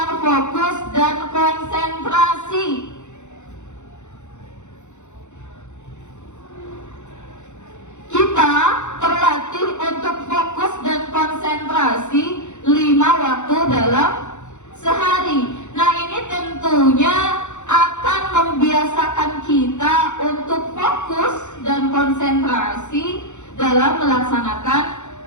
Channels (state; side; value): late; right; 0.84 ms